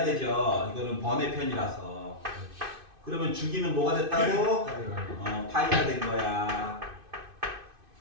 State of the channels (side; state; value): left; late; 2.5 ms